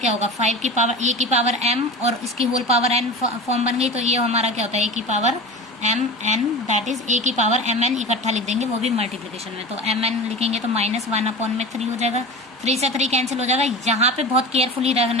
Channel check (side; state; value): both; normal; correlation 0.31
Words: होगा 5 की पावर a की पावर m और इसकी होल पावर n फॉर्म बन गई। तो ये हमारा क्या होता है a की power m n, that is a की पावर m n इकट्ठा लिख देंगे, वो भी मल्टीप्लिकेशन में। तो m n लिखेंगे तो -1/3 हो जाएगा, 3 से 3 कैंसिल हो जाएगा। यहाँ पे बहुत केयरफुली